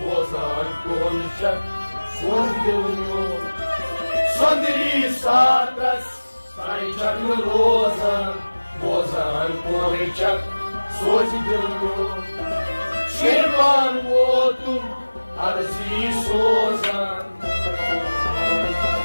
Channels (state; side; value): inverted; both; correlation -1.00